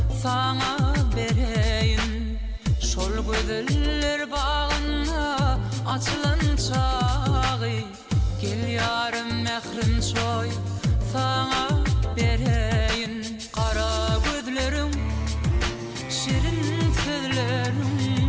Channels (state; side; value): identical; both; correlation 1.00